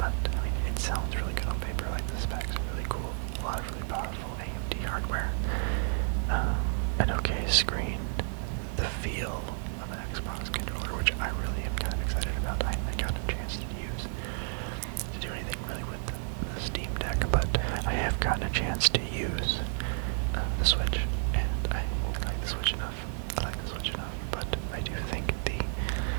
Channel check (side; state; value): left; silent; 57 dB below the other